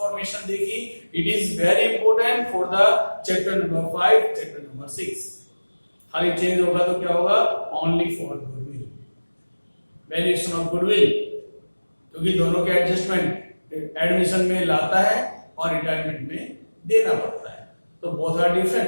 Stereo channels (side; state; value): both; inverted; correlation -1.00